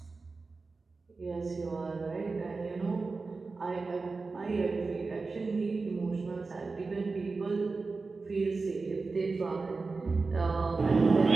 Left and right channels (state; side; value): quieter; left; 4.0 dB